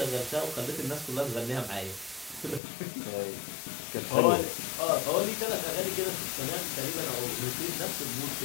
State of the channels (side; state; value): right; drops out; at 2.6 s